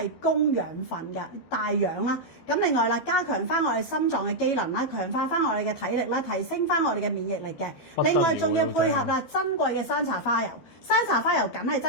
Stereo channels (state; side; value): late; right; 12 ms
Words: 供養分嘅帶氧啦。咁另外啦，加強翻我哋心臟嘅機能啦，強化翻我哋嘅體力啦，提升翻我哋嘅免疫力嘅。另外仲要配合啦珍貴嘅山茶花油，山茶花油梗係